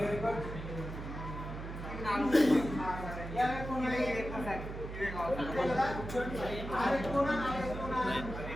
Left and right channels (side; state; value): right; noise; hum, 8 dB below the sound